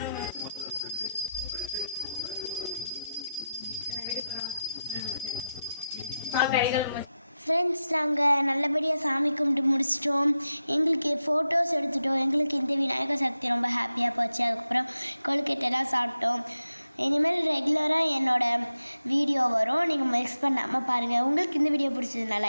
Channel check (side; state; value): both; inverted; correlation -0.90